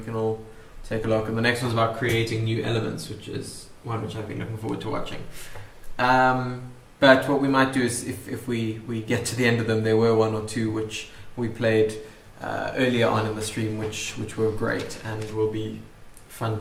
can all take a look. And the next one's about creating new elements, which is one which I've been looking forward to watching. But what we might do is, if we get to the end of them, there were 1 or 2 which we played earlier on in the stream, which were great and will be fun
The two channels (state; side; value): identical; both; correlation 1.00